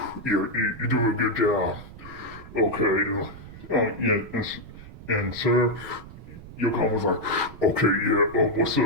you're doing a good job. Okay, yeah, and sir, Yoko was like, okay, yeah, what's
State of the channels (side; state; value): right; noise; rumble, 16 dB below the sound